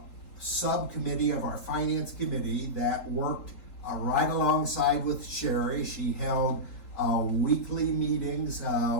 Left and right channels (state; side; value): late; right; 4.4 ms